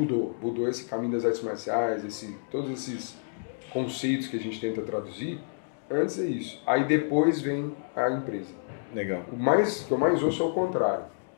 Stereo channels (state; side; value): silent; right; digital silence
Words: esse caminho das artes marciais, todos esses conceitos que a gente tenta traduzir, antes é isso. Aí depois vem a empresa. Legal. O que eu mais ouço é o contrário.